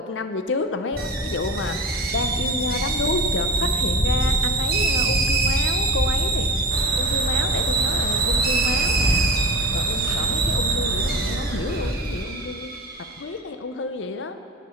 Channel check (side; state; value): both; normal; correlation 0.31